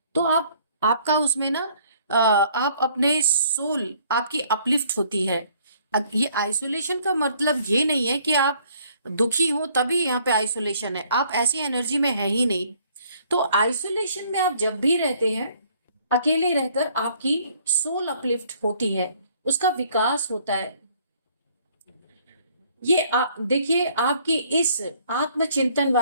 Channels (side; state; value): both; inverted; correlation -0.62